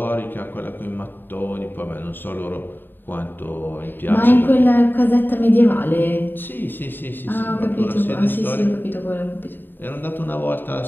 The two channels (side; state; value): right; late; 0.094 ms